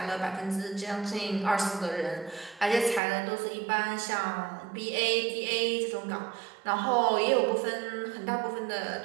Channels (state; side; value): drops out; left; at 3.0 s